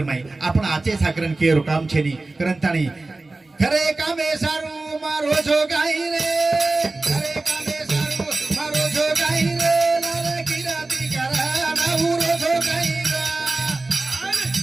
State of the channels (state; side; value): quieter; left; 3.2 dB